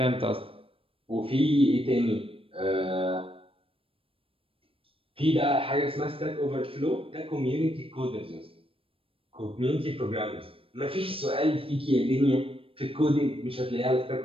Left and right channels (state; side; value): late; left; 0.27 ms